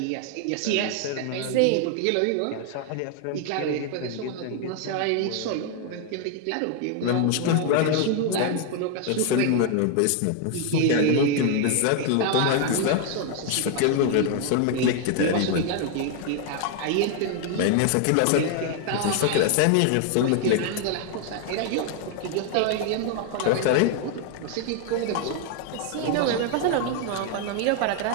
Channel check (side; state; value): both; different; correlation 0.00